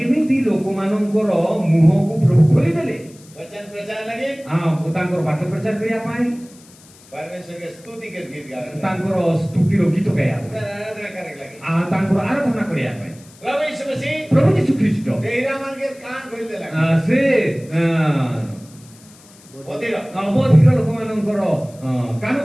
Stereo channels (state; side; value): noise; left; hiss, 25 dB below the sound